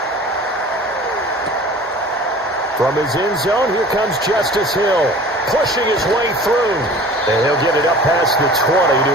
From his end zone, here comes Justice Hill, pushing his way through. And he'll get it up past the 20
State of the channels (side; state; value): both; normal; correlation 0.43